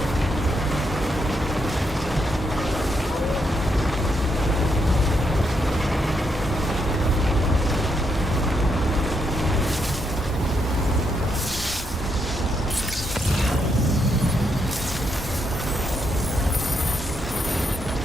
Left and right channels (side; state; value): both; normal; correlation 0.78